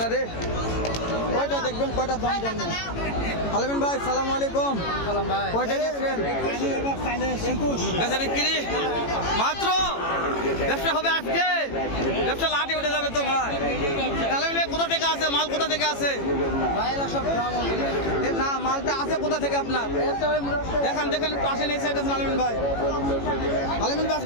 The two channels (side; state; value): right; late; 18 ms